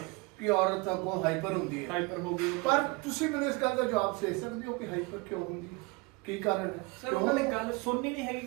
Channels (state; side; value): quieter; left; 26.1 dB